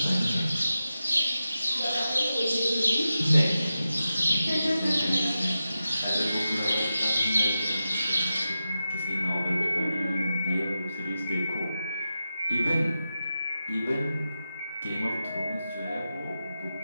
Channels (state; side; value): inverted; both; correlation -0.91